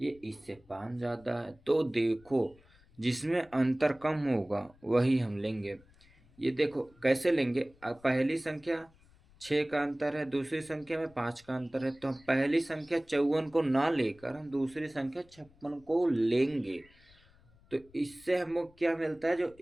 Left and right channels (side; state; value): left; noise; rumble, 28 dB below the sound